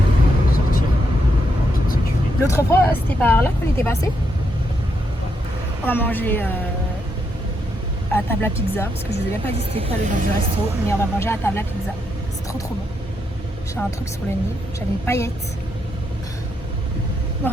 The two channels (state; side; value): normal; both; correlation 0.80